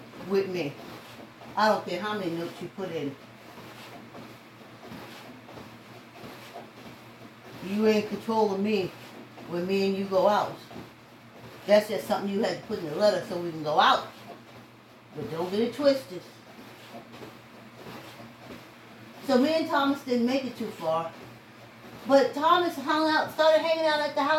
with me. I don't care how many notes you put in. You ain't in control of me when me and you go out. That's just something you had to put in the letter so we can go out. But don't get it twisted. So me and Thomas didn't make it too far. But Thomas started hanging out at the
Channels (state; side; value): identical; both; correlation 1.00